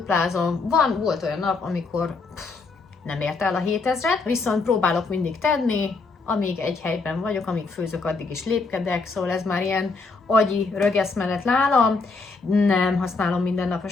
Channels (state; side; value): quieter; right; 4.1 dB